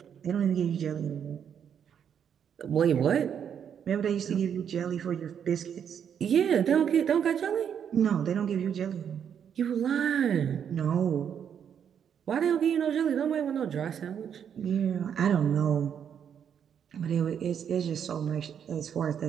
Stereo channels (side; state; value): left; quieter; 8.3 dB